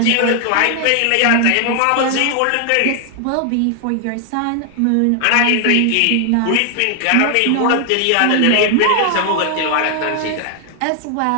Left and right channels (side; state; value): both; different; correlation 0.00